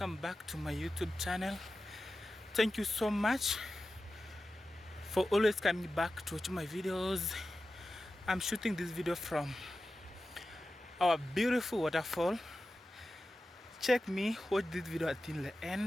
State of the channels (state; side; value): normal; both; correlation 0.93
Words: back to my YouTube channel. Thank you so much for always coming back to watch my videos. I'm shooting this video from our beautiful waterfall. Check me, watch this video until the